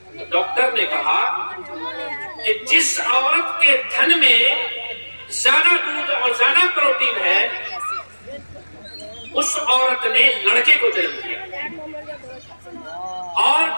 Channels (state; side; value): inverted; both; correlation -1.00